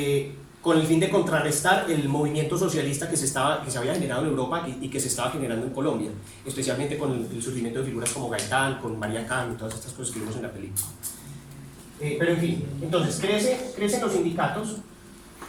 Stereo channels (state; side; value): identical; both; correlation 1.00